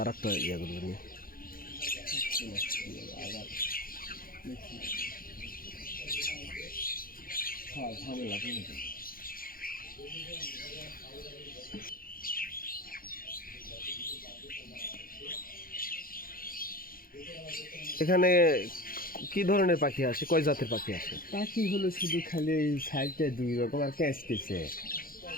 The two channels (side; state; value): right; late; 0.42 ms